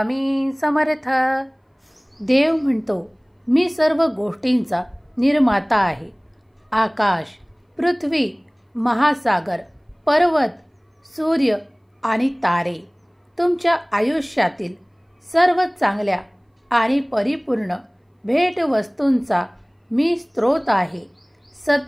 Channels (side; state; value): both; identical; correlation 1.00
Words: समर्थ. देव म्हणतो, मी सर्व गोष्टींचा निर्माता आहे. आकाश, पृथ्वी, महासागर, पर्वत, सूर्य आणि तारे, तुमच्या आयुष्यातील सर्व चांगल्या आणि परिपूर्ण भेटवस्तूंचा मी स्रोत आहे.